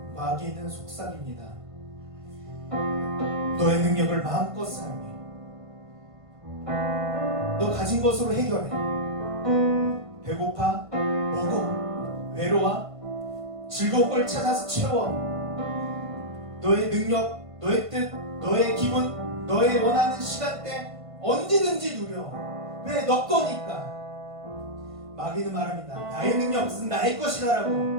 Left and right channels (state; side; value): late; left; 1.5 ms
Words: 마귀는 속삭입니다. 너의 능력을 마음껏 사용해. 너 가진 것으로 해결해. 배고파? 먹어. 외로워? 즐거운 걸 찾아서 채워. 너의 능력, 너의 뜻, 너의 기분, 너의 원하는 시간대 언제든지 누려. 왜? 너 거니까. 마귀는 말합니다. 나의 능력은 나의 것이다라고